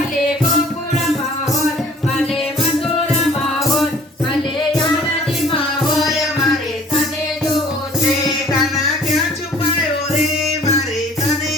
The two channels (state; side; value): normal; both; correlation 0.53